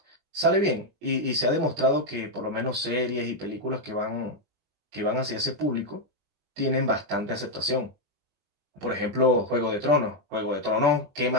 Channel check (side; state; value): left; late; 20 ms